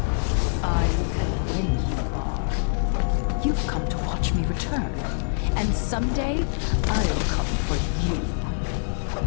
I know when you are. You've come to watch me return, and someday I'll come for you.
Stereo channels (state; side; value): silent; right; digital silence